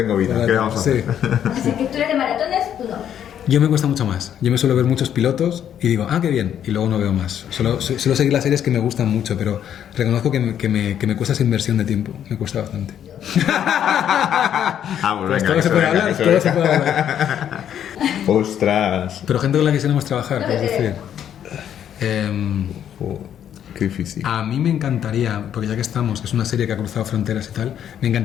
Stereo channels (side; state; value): right; quieter; 9.7 dB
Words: vida, ¿qué vamos a hacer? Así que tú eres de maratones, tú no. Yo me cuesta mucho más. Yo me suelo ver muchos pilotos y digo, qué bien, y luego no veo más. Suelo seguir las series que me gustan mucho, pero reconozco que me cuesta esa inversión de tiempo. Me cuesta bastante. Pues todo se puede hablar, ¡Ostras! Pero gente con la que quisiéramos trabajar, es decir... Qué difícil. A mí me encantaría, porque ya que estamos, que es una serie que ha cruzado fronteras y tal, me